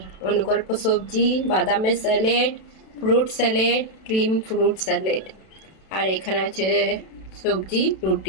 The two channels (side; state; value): right; late; 32 ms